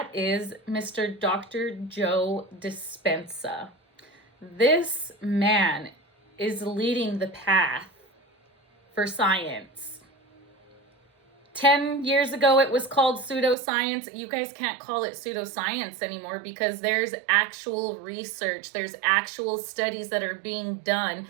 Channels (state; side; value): drops out; left; at 13.6 s